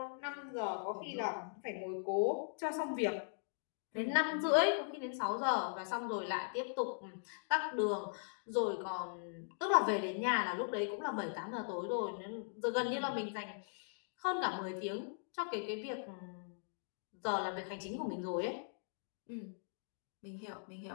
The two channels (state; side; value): silent; right; digital silence